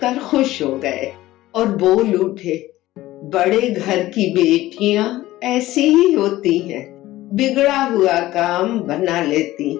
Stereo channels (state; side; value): quieter; right; 16.2 dB